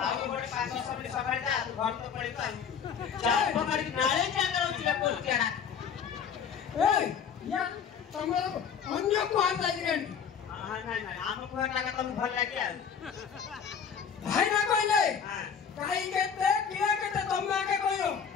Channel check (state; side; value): quieter; right; 7.2 dB